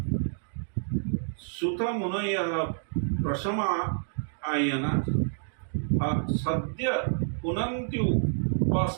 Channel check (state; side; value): silent; left; digital silence